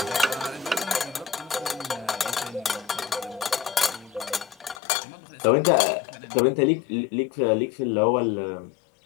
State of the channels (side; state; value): right; drops out; at 4.8 s